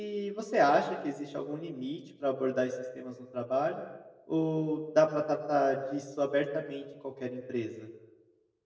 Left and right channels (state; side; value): identical; both; correlation 1.00